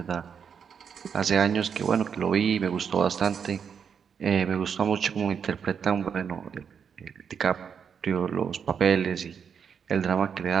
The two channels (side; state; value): left; quieter; 7.0 dB